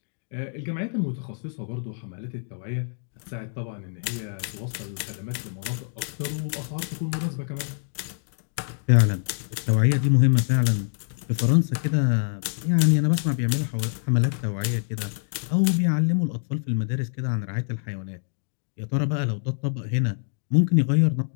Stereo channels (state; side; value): silent; right; digital silence